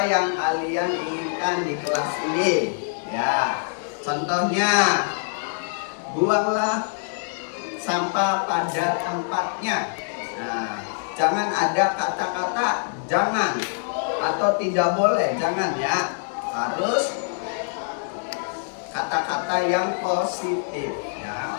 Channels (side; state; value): right; silent; digital silence